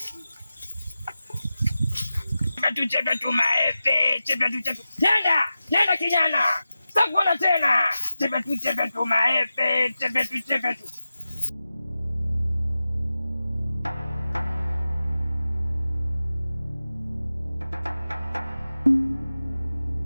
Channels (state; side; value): inverted; both; correlation -0.93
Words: Chepe tu maepe. Nenda kijana. Sitakuona tena. Chepe tu maepe. Chepe tu.